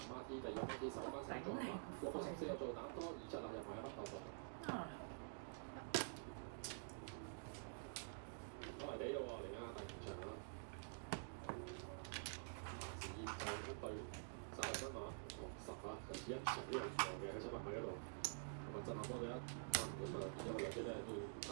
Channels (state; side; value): silent; left; digital silence